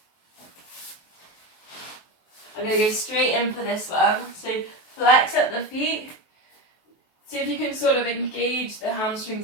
I'm going to go straight in for this one. So flex up the feet, See if you can sort of engage the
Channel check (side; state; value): right; late; 23 ms